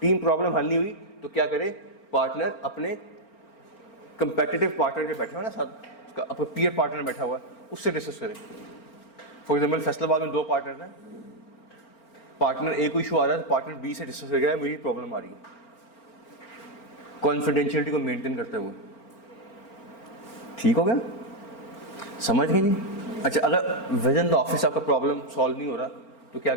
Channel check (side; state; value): right; late; 4.4 ms